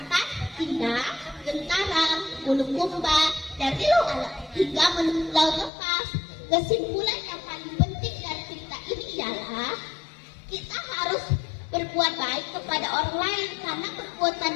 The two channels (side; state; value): right; drops out; at 5.7 s